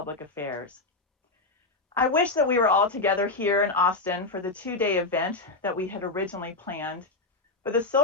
Affairs. I wish that we were all together here in Austin for the two-day event that we had originally planned. But the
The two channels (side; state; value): right; quieter; 3.4 dB